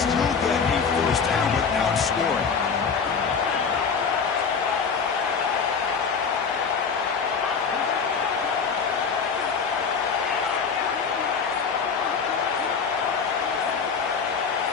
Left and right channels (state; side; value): quieter; right; 5.8 dB